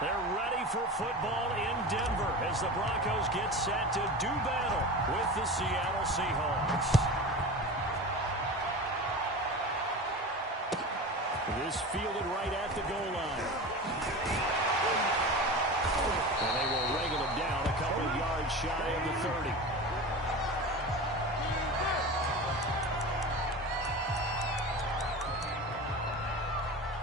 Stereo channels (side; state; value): both; normal; correlation 0.30